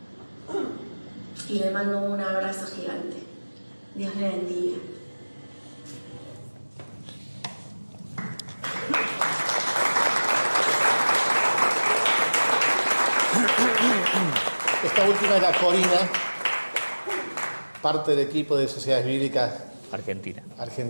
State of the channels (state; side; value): inverted; both; correlation -1.00